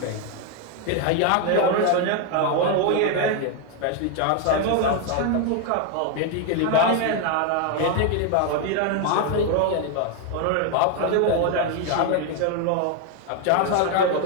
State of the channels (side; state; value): both; different; correlation 0.01